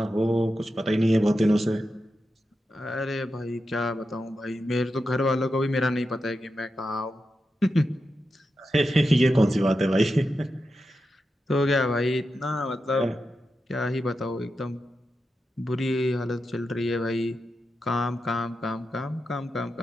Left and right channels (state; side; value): normal; both; correlation 0.89